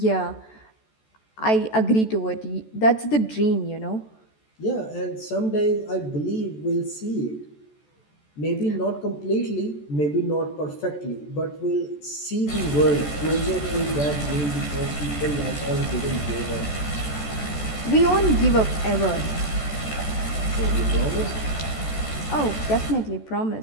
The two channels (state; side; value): late; right; 14 ms